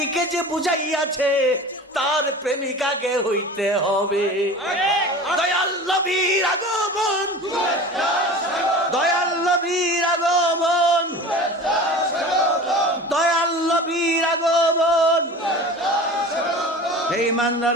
যে বুঝাইয়াছে তার প্রেমিকাকে হইতে হবে। দয়াল নবীর আগমন, দয়াল নবীর আগমন, দয়াল নবীর আগমন। হে ইমানদার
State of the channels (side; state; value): both; normal; correlation 0.36